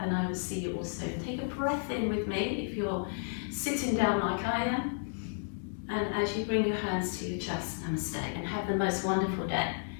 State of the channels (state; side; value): silent; right; digital silence